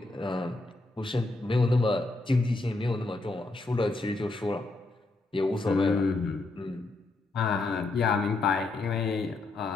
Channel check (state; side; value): quieter; right; 3.1 dB